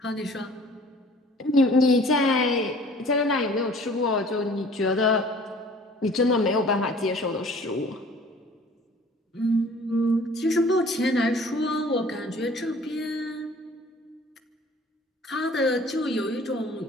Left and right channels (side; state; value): both; normal; correlation 0.50